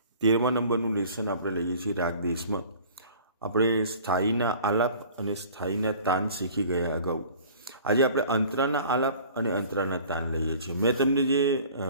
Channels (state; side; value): inverted; both; correlation -0.47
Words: નંબરનું લેસન આપણે લઈએ છીએ. રાગ દેશમાં આપણે સ્થાયીના આલાપ અને સ્થાયીના તાન શીખી ગયા અગાઉ. આજે આપણે અંતરાના આલાપ અને અંતરાના તાન લઈએ છીએ. મેં તમને જે